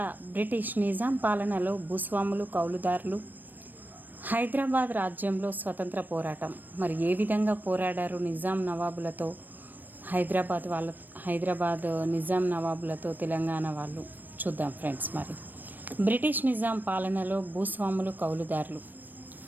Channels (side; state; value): left; late; 0.090 ms